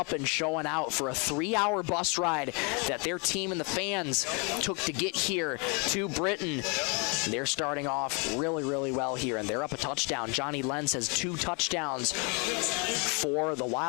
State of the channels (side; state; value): right; quieter; 33.2 dB